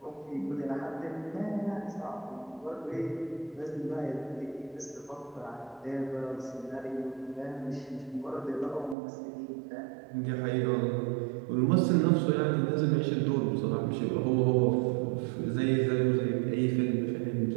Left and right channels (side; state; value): left; drops out; at 9.0 s